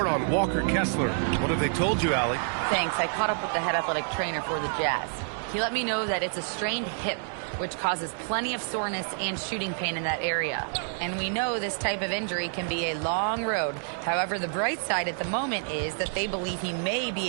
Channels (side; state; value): left; silent; 59 dB below the other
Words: on Walker Kessler. What have they told you, Allie? Thanks. I caught up with the head athletic trainer for the Jazz. He let me know that it's a strained hip, which causes plenty of soreness and shooting pain in that area. And we know this type of injury can be a long road. However, the bright side at the moment is that they believe he may